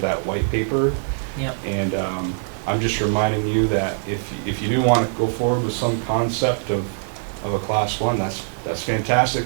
that white paper. Yep. And I'm just reminding you that if you do want to go forward with some concept of a class one, that's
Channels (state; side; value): silent; left; digital silence